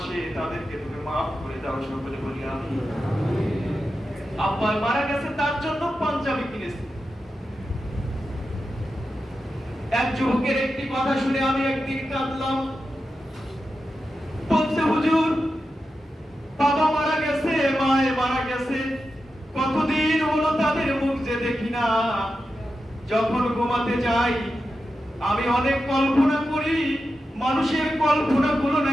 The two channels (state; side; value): normal; both; correlation 0.90